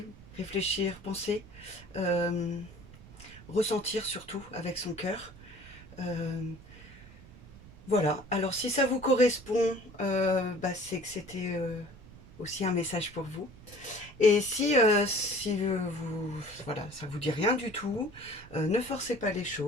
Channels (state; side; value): noise; right; rumble, 20 dB below the sound